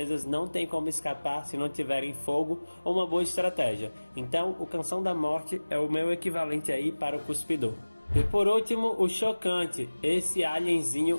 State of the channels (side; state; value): both; inverted; correlation -1.00